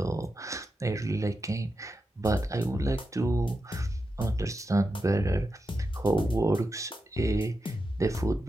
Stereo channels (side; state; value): both; normal; correlation 0.89